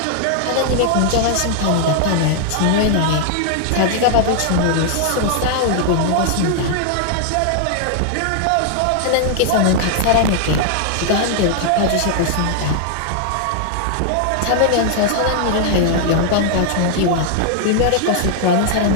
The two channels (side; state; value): both; different; correlation 0.00